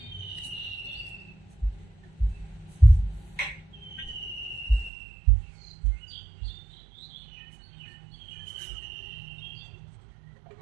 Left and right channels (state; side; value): drops out; left; at 4.9 s